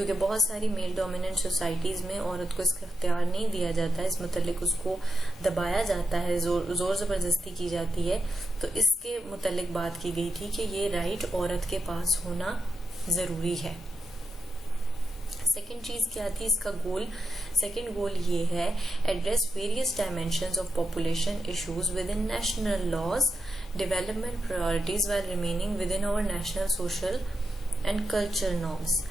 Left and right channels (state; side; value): normal; both; correlation 0.87